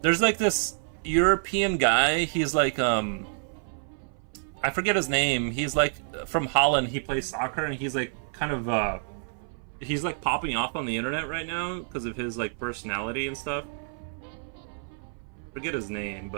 there's, like, this European guy. He's like, I forget his name. He's like from Holland. He plays soccer, and he's like kind of he's like popping off on the internet right now because of his like personality and stuff. Forget his name,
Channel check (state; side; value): silent; left; 57 dB below the other